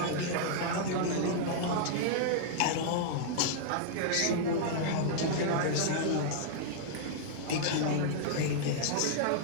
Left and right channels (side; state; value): both; different; correlation -0.01